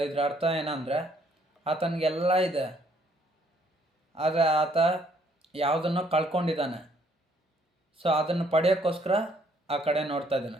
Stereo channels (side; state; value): both; normal; correlation 0.66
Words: ಇದ್ರ ಅರ್ಥ ಏನಂದರೆ ಆತನಿಗೆಲ್ಲ ಇದೆ, ಆದರೆ ಆತ ಯಾವುದನ್ನೋ ಕಳ್ಕೊಂಡಿದ್ದಾನೆ. ಸೊ ಅದನ್ನು ಪಡೆಯೋಕ್ಕೋಸ್ಕರ ಆ ಕಡೆ ನೋಡ್ತಾ ಇದ್ದಾನೆ.